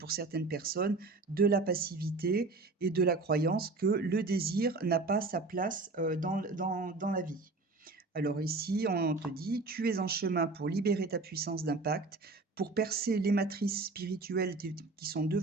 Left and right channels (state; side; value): quieter; left; 3.6 dB